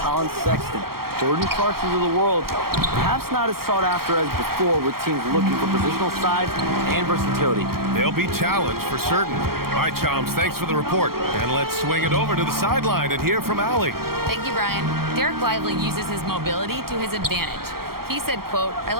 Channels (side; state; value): left; late; 0.94 ms